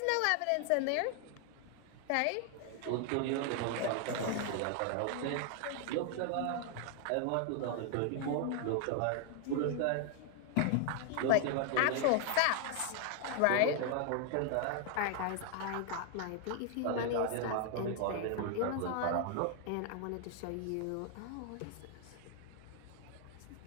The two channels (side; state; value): both; different; correlation 0.00